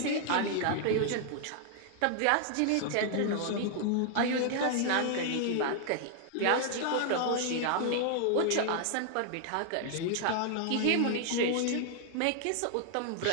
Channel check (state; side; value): different; both; correlation 0.00